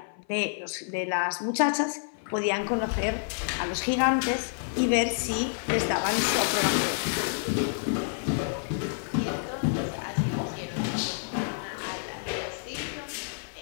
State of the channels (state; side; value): silent; right; 55 dB below the other